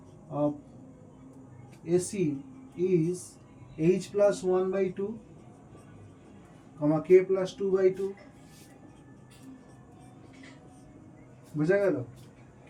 of AC is h plus 1/2 comma k plus 2/2, বুঝা গেল? k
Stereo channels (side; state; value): both; identical; correlation 1.00